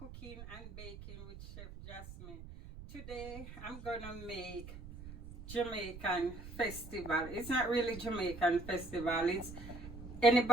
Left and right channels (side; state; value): right; noise; rumble, 13 dB below the sound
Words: and Baking with Chef Jasmine. Today I'm gonna make Jamaican festival. It's not really Jamaican festival, it's